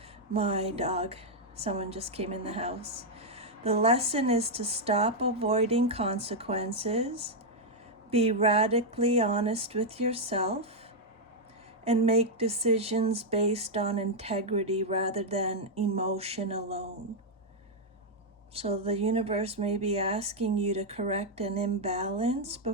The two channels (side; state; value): both; normal; correlation -0.02